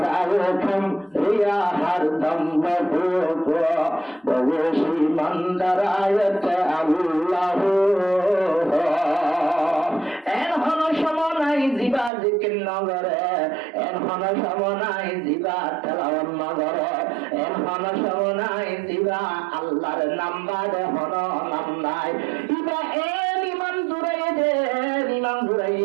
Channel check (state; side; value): drops out; left; at 12.1 s